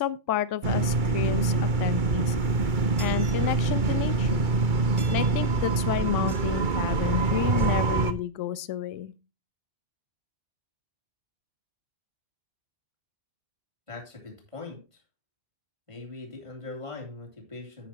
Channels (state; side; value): late; left; 2.2 ms